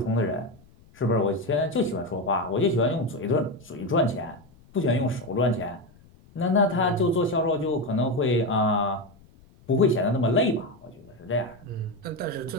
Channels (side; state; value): left; noise; rumble, 27 dB below the sound